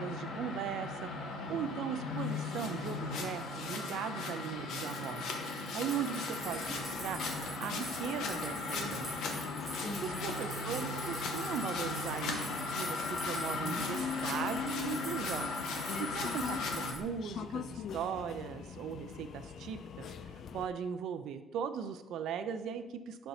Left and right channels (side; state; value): both; normal; correlation 0.52